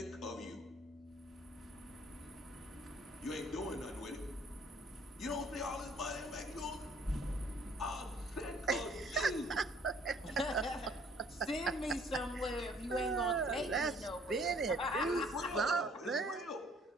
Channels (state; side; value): normal; both; correlation 0.59